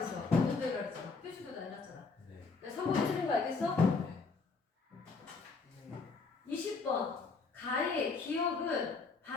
관념적이라 그랬잖아. 표시도 다 해놨잖아. 네. 3번이 틀린 거 알겠어? 네. 네. 20번. 가의 기억은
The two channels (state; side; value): quieter; right; 4.4 dB